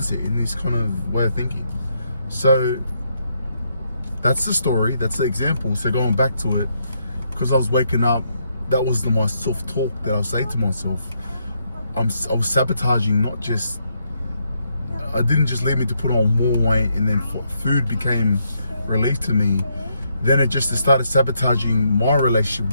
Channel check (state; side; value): inverted; both; correlation -0.76